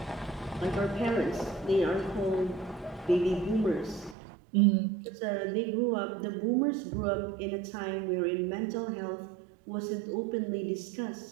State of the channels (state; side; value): drops out; left; at 4.2 s